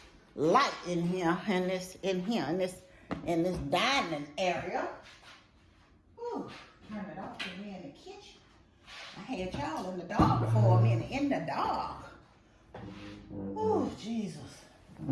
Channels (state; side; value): identical; both; correlation 1.00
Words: light in here, in this dining area. Ooh, turn it off in here in the kitchen. I had y'all in the dark for a minute, in the dark. Oh, Jesus.